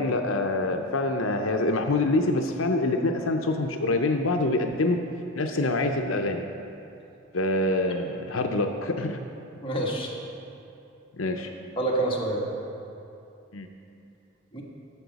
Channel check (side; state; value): both; normal; correlation 0.13